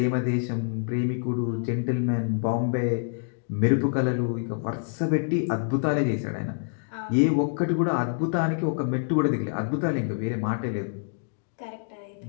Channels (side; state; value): right; silent; digital silence